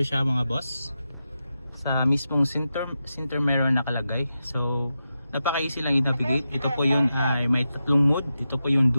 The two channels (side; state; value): both; inverted; correlation -0.89